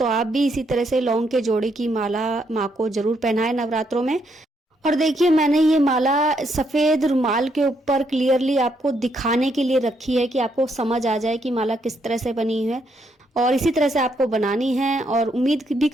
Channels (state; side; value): normal; both; correlation 0.75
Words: आप भी इसी तरह से लौंग के जोड़े की माला माँ को जरूर पहनाएं नवरात्रों में। और देखिए मैंने ये माला सफ़ेद रुमाल के ऊपर क्लियरली आपको दिखाने के लिए रखी है कि आपको समझ आ जाए कि माला किस तरह से बनी है, और इसी तरह से आपको बनानी है। और उम्मीद भी